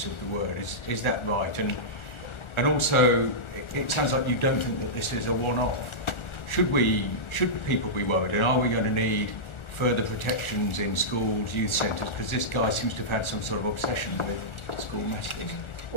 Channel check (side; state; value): right; late; 1.4 ms